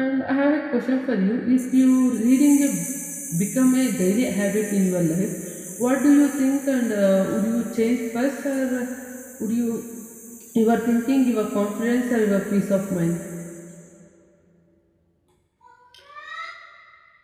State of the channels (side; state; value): both; identical; correlation 1.00